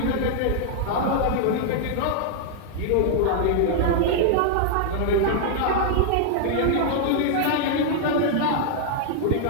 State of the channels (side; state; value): both; different; correlation -0.01